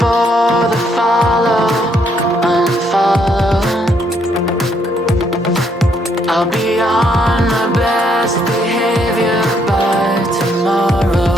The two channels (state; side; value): normal; both; correlation 0.71